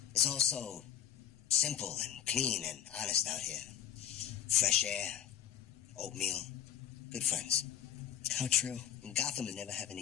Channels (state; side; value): quieter; right; 10.3 dB